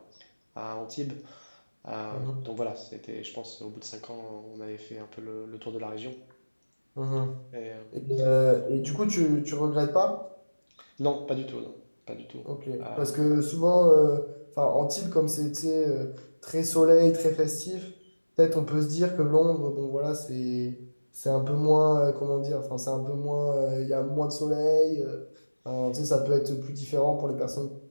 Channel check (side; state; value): both; inverted; correlation -1.00